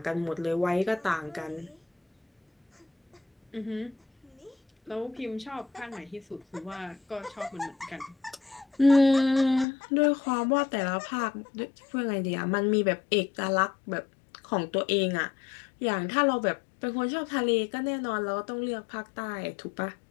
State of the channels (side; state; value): right; drops out; at 9.7 s